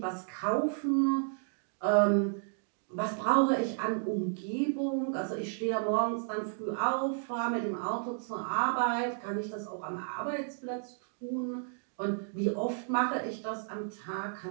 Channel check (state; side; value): silent; left; digital silence